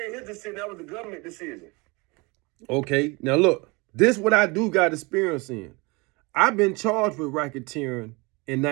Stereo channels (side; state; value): left; quieter; 26.8 dB